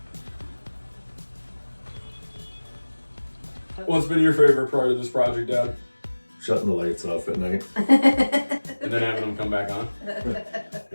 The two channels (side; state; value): both; inverted; correlation -1.00